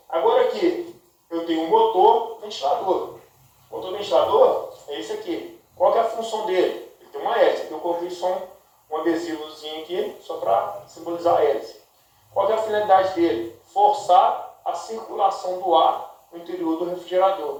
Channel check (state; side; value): identical; both; correlation 1.00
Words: agora aqui eu tenho um motor ventilador. O motor ventilador é esse aqui. Qual que é a função dele? Ele tem uma hélice. Aqui eu coloquei só um adesivozinho aqui, só para simbolizar a hélice. Qual que é a finalidade dele? Forçar a circulação do ar no interior do